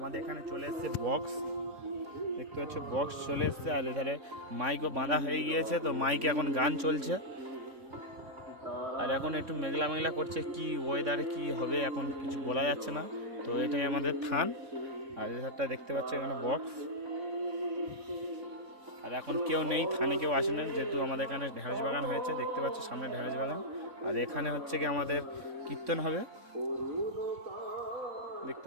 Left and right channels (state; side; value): late; left; 3.5 ms